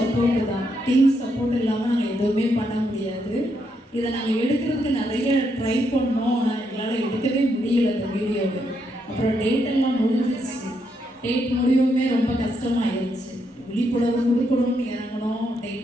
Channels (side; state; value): both; normal; correlation 0.78